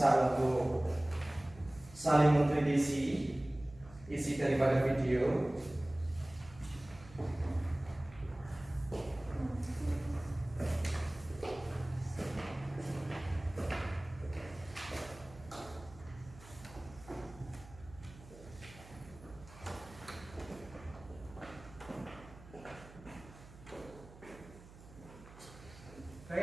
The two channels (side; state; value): right; noise; hum, 19 dB below the sound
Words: untuk saling mengkritisi isi daripada video.